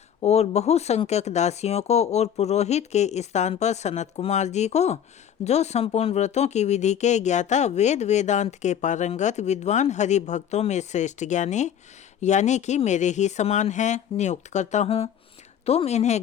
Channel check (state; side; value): quieter; right; 9.1 dB